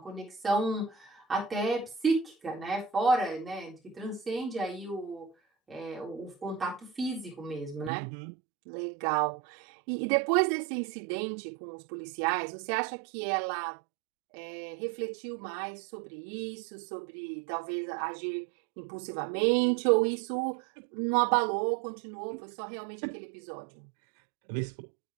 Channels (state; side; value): drops out; left; at 7.9 s